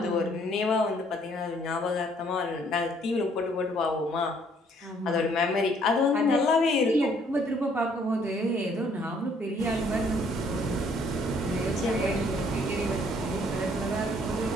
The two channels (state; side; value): normal; both; correlation 0.63